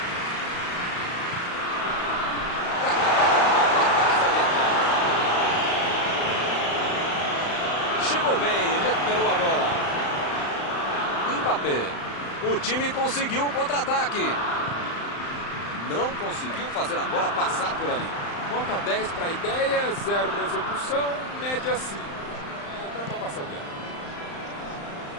Chegou bem, recuperou a bola. Mbappé. O time conseguiu o contra-ataque. Não conseguiu fazer a bola passar por ali. Nota 10 para a ideia, 0 para a execução, média 5. Dá para passar adiante.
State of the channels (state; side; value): late; right; 35 ms